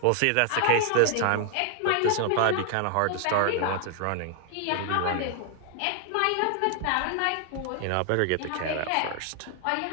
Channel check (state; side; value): different; both; correlation 0.00